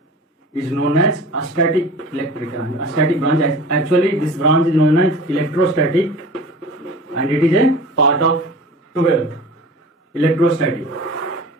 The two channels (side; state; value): both; normal; correlation 0.39